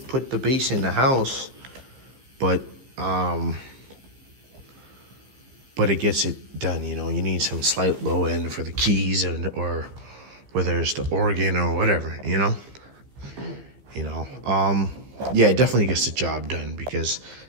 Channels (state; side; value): late; left; 15 ms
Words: put the bass in the house, but it gets it done. You know, you need some slight low end for the keys, or whether it's the organ or whatever. You know, yeah, it definitely gets the job done, because